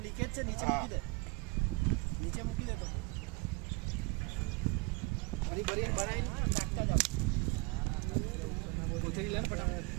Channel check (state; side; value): quieter; left; 26.5 dB